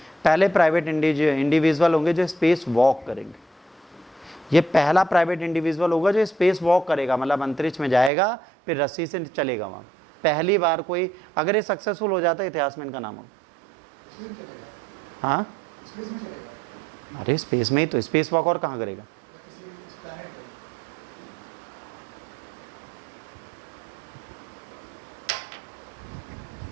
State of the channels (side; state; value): left; drops out; at 8.1 s